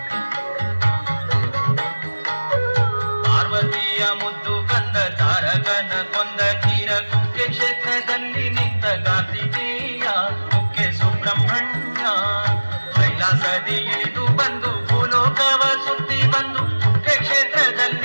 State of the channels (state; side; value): inverted; both; correlation -1.00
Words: ಪಾರ್ವತಿಯ ಮುದ್ದು ಕಂದ ತಾರಕನ ಕೊಂದ ಕ್ಷೀರ ಕುಕ್ಕೆ ಕ್ಷೇತ್ರದಲ್ಲಿ ನಿಂತ ಕಾರ್ತಿಕೇಯ ಕುಕ್ಕೆ ಸುಬ್ರಹ್ಮಣ್ಯ. ಕೈಲಾಸದಿ ಇಳಿದು ಬಂದು ಭೂಲೋಕವ ಸುತ್ತಿ ಬಂದು ಕುಕ್ಕೆ